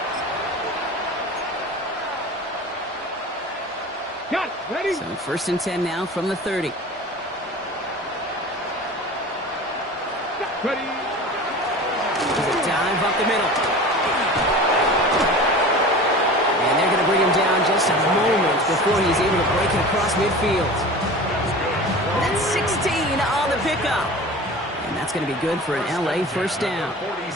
Got it. Ready? So first and 10 now from the 30. Ready. There's a dive up the middle. And they're going to bring him down just a moment before he's able to break it across midfield. That's 16 on the pickup. And that's going to be good for an LA first down.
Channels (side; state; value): both; normal; correlation 0.36